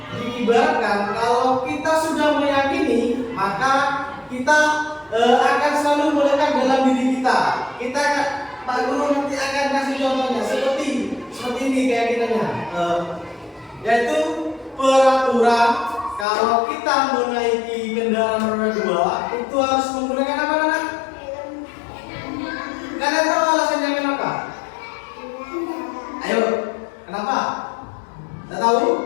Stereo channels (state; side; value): drops out; right; at 16.2 s